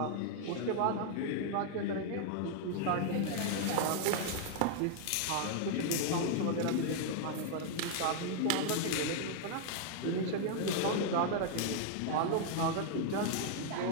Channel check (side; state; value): both; different; correlation -0.01